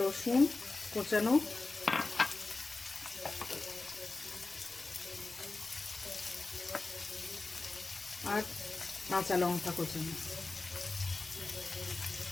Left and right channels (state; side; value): quieter; right; 3.5 dB